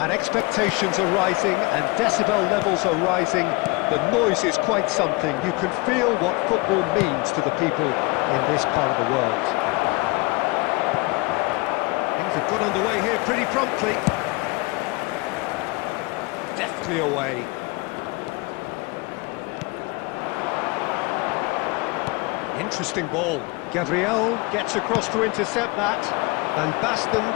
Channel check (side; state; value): right; quieter; 24.7 dB